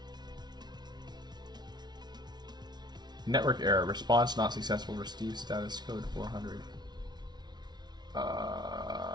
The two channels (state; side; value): late; left; 0.20 ms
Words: Network error. Response not successful. Receive status code 400.